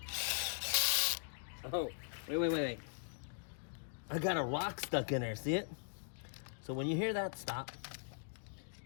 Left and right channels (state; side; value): silent; right; digital silence